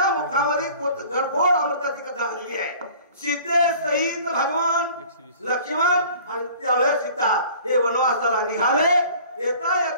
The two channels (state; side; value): inverted; both; correlation -0.48